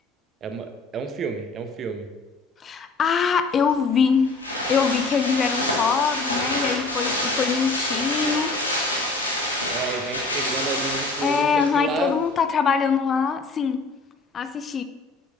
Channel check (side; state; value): right; quieter; 3.8 dB